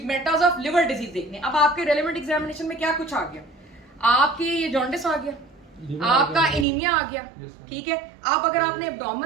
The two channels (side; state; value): left; drops out; at 6.7 s